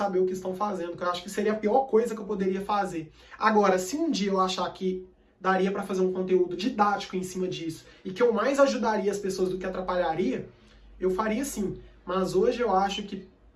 o que estão fazendo, que eu acho que seria a pior coisa que eu poderia fazer. Agora, se um dia eu achar que daria para fazer um conteúdo didático em cima disso e que eu mais ajudaria as pessoas do que atrapalharia, eu faria sim. Mas hoje eu acho que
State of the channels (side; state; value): both; identical; correlation 1.00